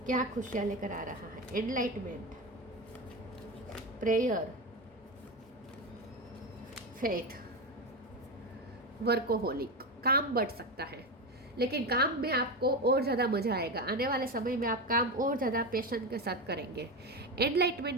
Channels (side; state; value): both; normal; correlation 0.18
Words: क्या खुशियां लेकर आ रहा है? Enlightenment, prayer, faith, workaholic. काम बढ़ सकता है लेकिन काम में आपको और ज़्यादा मजा आएगा। आने वाले समय में आप काम और ज़्यादा पैशन के साथ करेंगे।